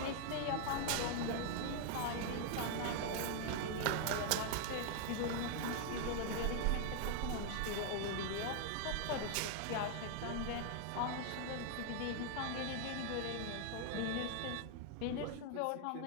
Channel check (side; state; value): both; different; correlation 0.00